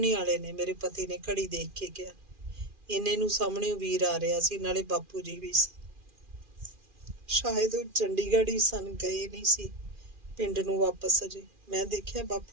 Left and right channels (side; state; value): left; late; 2.4 ms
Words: ही वाले ने, मेरे पति ने घड़ी देख के कहा। इन्ने नूं सामणे वीर आ रहा सी, नाले बापू जी भी सन। शायद वो चंडीगढ़ ही सन, गए नहीं सी पिंड नूं वापस अजे। मैं देखिया